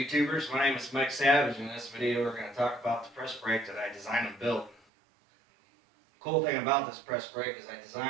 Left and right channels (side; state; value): left; drops out; at 4.8 s